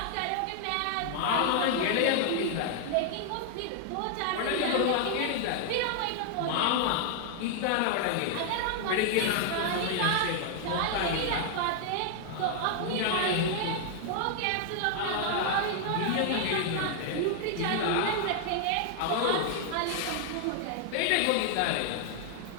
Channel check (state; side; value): different; both; correlation 0.00